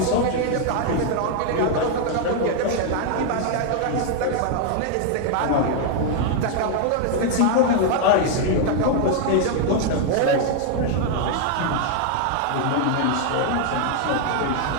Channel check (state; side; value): different; both; correlation 0.00